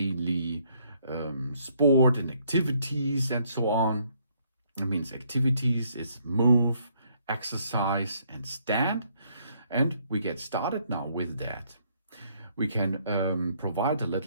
sport and activities and so on. It means activities is move, exercise, and stand. And we get started now with that. We can provide a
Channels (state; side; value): inverted; both; correlation -0.68